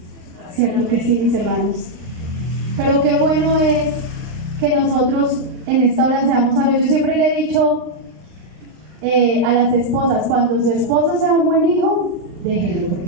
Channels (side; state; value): left; late; 39 ms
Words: Cierto que sí, mis hermanos. Pero qué bueno es que nosotros en esta hora seamos sabios. Yo siempre le he dicho a las esposas, cuando su esposo sea un buen hijo, déjelo,